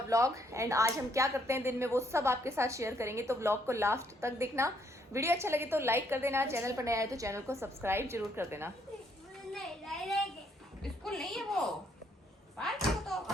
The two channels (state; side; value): normal; both; correlation 0.70